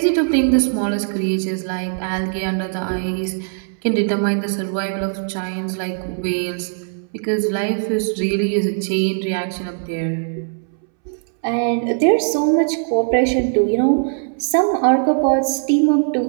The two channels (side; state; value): left; silent; 66 dB below the other